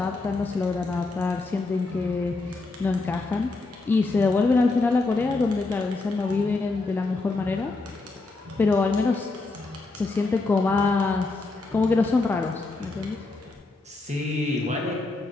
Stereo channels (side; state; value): right; quieter; 3.5 dB